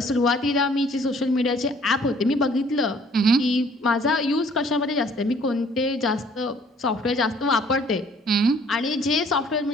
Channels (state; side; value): normal; both; correlation 0.58